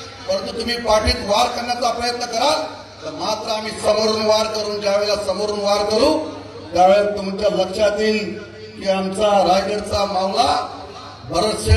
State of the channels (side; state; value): both; identical; correlation 1.00